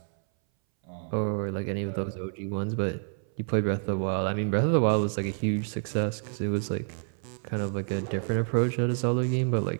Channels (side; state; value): left; silent; 59 dB below the other